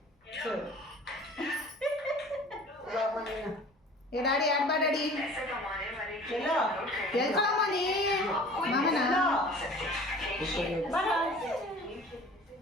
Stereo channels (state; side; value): normal; both; correlation 0.45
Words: ಏ ಡ್ಯಾಡಿ ಆಡ್ಬಾ ಡ್ಯಾಡಿ. ಎಲ್ಲೋ ಎಲ್ಕೊಳಮ್ಮ ನೀ ಮಾಮನ